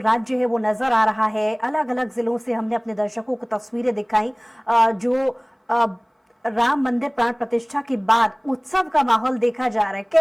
है वो नजर आ रहा है। अलग अलग जिलों से हमने अपने दर्शकों को तस्वीरें दिखाई। जो राम मंदिर प्राण प्रतिष्ठा के बाद उत्सव का माहौल देखा जा रहा है,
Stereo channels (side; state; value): both; identical; correlation 1.00